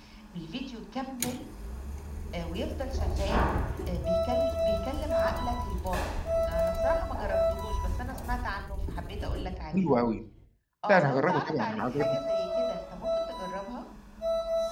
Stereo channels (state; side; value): identical; both; correlation 1.00